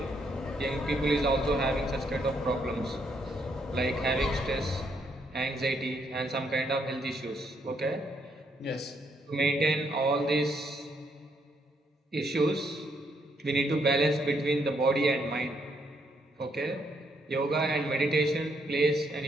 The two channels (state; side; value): normal; both; correlation 0.74